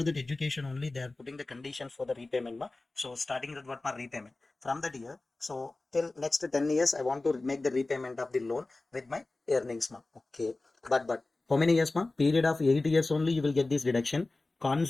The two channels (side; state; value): right; quieter; 3.2 dB